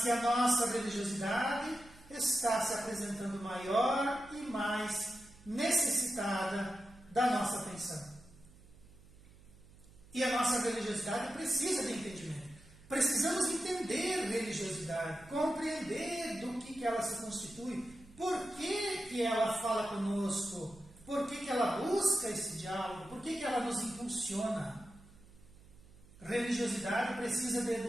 que a nossa religiosidade está se apresentando maior e mais necessitada da nossa atenção. E a nossa religiosidade precisa de entendimento. Precisamos entender religiosidade, compreender do que ela se constitui, por que ela fala conosco, por que ela busca esse diálogo, por que ela nos impulsiona. Religiosidade precisa de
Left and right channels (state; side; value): noise; right; hum, 23 dB below the sound